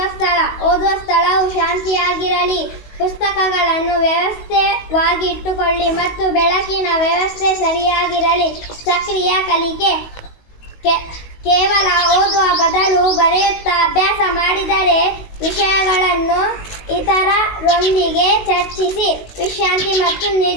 ಓದುವ ಸ್ಥಳವು ಶಾಂತಿಯಾಗಿರಲಿ. ಪುಸ್ತಕಗಳನ್ನು ವ್ಯವಸ್ಥಿತವಾಗಿ ಇಟ್ಟುಕೊಳ್ಳಿ ಮತ್ತು ಬೆಳಕಿನ ವ್ಯವಸ್ಥೆ ಸರಿಯಾಗಿರಲಿ. ಸಕ್ರಿಯ ಕಲಿಕೆ: ಕೇವಲ ಓದುವ ಬದಲು ಬರೆಯುತ್ತಾ ಅಭ್ಯಾಸ ಮಾಡಿದರೆ ವಿಷಯಗಳನ್ನು ಇತರರೊಂದಿಗೆ ಚರ್ಚಿಸಿ. ವಿಶ್ರಾಂತಿ ಮತ್ತು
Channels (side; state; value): right; late; 19 ms